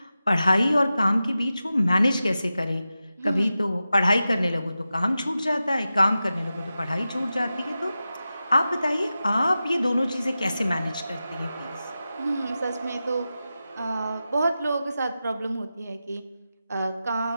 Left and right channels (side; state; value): both; inverted; correlation -0.92